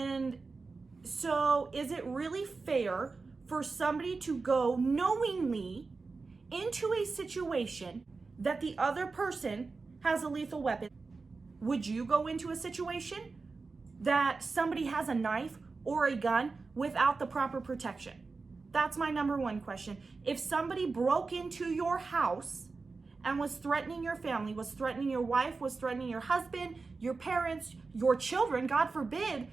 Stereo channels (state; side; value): quieter; left; 4.2 dB